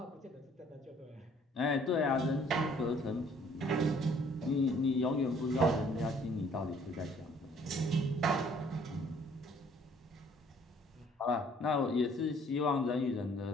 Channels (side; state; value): both; normal; correlation 0.59